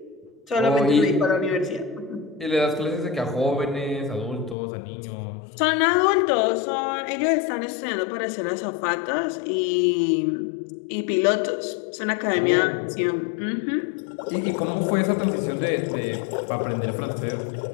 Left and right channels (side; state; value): right; drops out; at 4.5 s